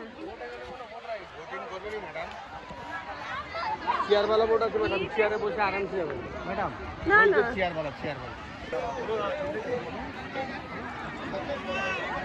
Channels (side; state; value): both; identical; correlation 1.00